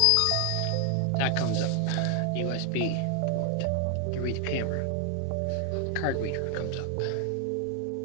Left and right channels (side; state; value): both; different; correlation 0.00